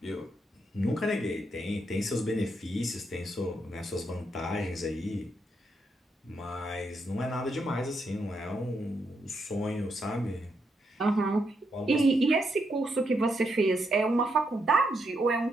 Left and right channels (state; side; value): normal; both; correlation 0.79